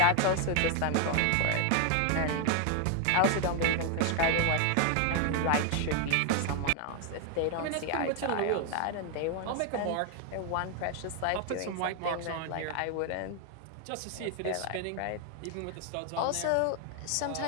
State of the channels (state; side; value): different; both; correlation 0.01